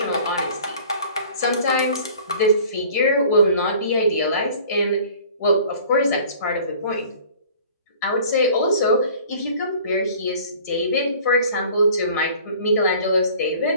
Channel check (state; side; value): inverted; both; correlation -0.48